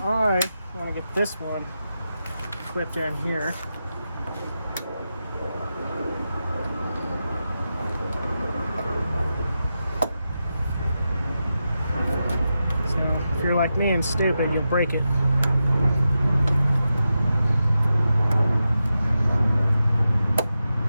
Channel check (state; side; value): inverted; both; correlation -0.90